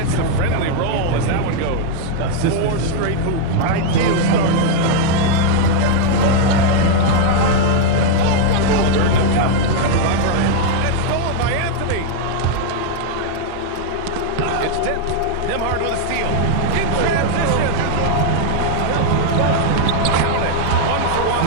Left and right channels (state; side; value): different; both; correlation 0.00